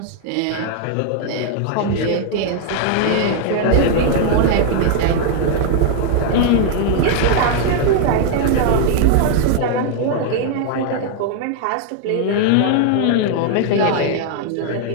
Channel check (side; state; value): both; different; correlation 0.00